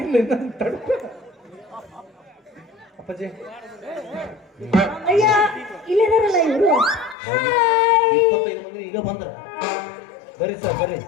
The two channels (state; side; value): drops out; right; at 7.2 s